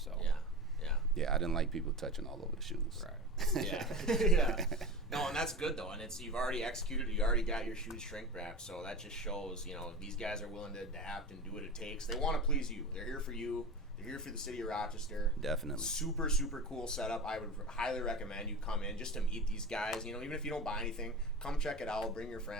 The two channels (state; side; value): normal; both; correlation 0.28